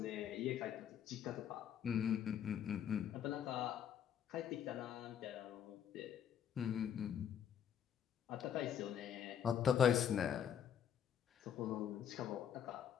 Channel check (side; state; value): right; quieter; 8.9 dB